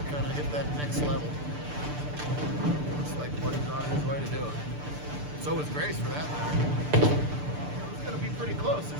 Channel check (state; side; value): late; left; 6.8 ms